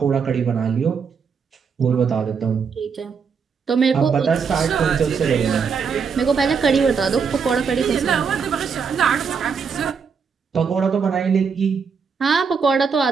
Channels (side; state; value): left; quieter; 6.0 dB